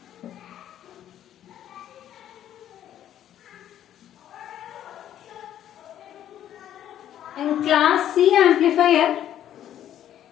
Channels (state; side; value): quieter; right; 11.1 dB